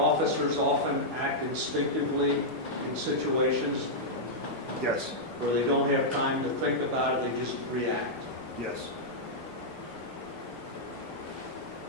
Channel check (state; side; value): normal; both; correlation -0.08